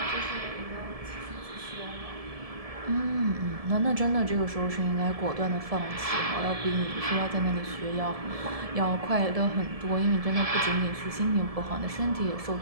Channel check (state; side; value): late; left; 1.7 ms